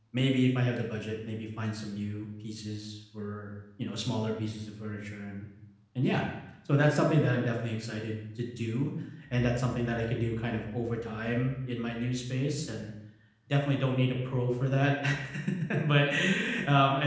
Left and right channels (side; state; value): both; identical; correlation 1.00